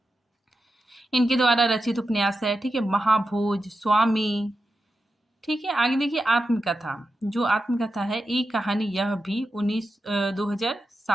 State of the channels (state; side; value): normal; both; correlation 0.90